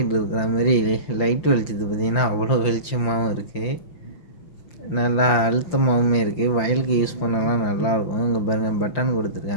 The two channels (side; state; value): right; late; 5.8 ms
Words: இருக்கிற மாதிரி லைட் வெளிச்சது பார்த்திங்கன்னா அவ்வளோ வெளிச்சமாகவும் இருக்குது. நல்லா அழுத்தமாகவும் இருக்குது. வயலுக்கு யூஸ் பண்ணலாம் நல்லாயிருக்கும். இங்கே பாருங்கள், பட்டன்